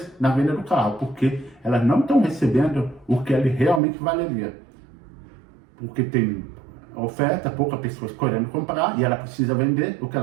na venda do carro, porque elas não estão recebendo o que ele realmente valeria. Porque tem oferta, poucas pessoas querendo comprar e ela precisa vender. O que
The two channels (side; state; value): left; drops out; at 3.8 s